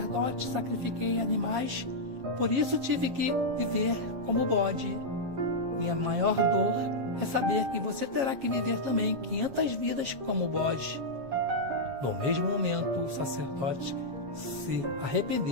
sacrifiquei animais, por isso tive que viver como bode. Minha maior dor é saber que você terá que viver também 500 vidas como bode." No mesmo momento, o sacerdote se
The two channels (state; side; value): late; left; 7.4 ms